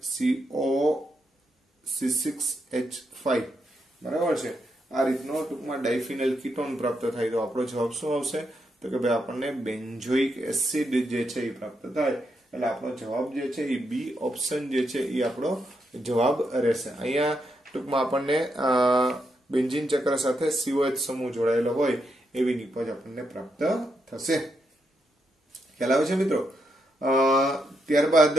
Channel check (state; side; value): normal; both; correlation 0.81